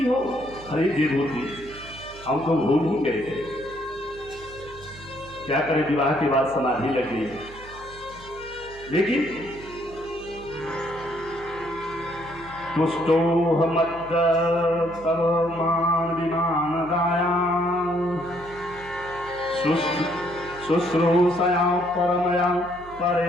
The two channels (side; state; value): right; noise; hum, 19 dB below the sound